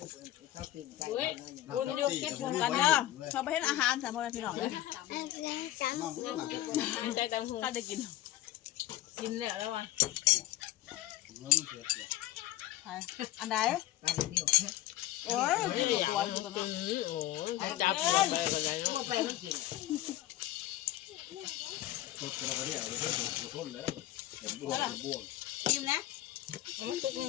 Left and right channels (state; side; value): quieter; right; 14.9 dB